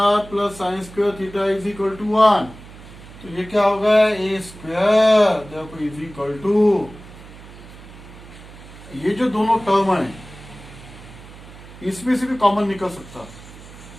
plus sine square theta is equal to 1। तो ये क्या होगा, ए स्क्वायर देखो इज इक्वल टू, ये जो दोनों टर्म है इसमें से भी कॉमन निकल सकता।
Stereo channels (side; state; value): right; noise; hum, 18 dB below the sound